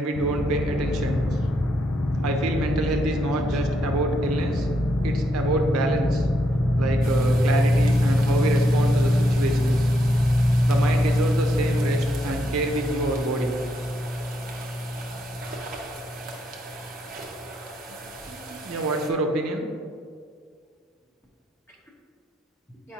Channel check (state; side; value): normal; both; correlation 0.78